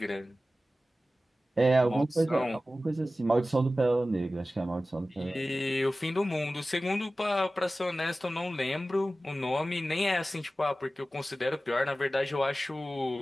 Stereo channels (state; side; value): normal; both; correlation 0.96